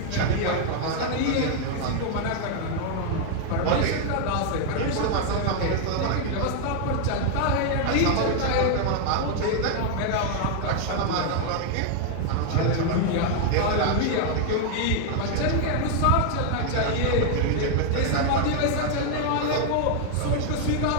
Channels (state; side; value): different; both; correlation 0.00